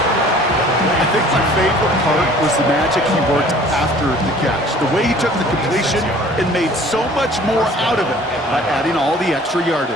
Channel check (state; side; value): normal; both; correlation 0.51